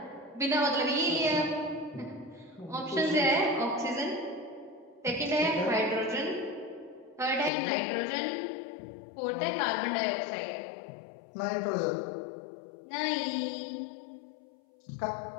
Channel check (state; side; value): drops out; right; at 7.5 s